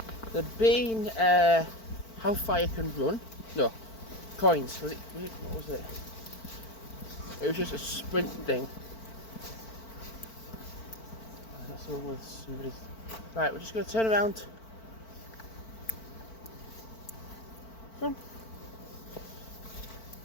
how far you can run. No, coins. What was it? It was just a sprint thing. That's the one with somebody's. Right, we're just going to turn around. Come on.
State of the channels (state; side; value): late; right; 4.5 ms